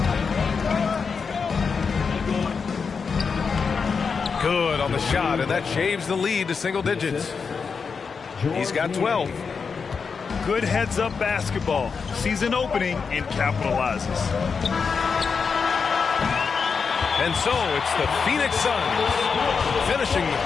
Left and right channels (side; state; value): right; quieter; 5.5 dB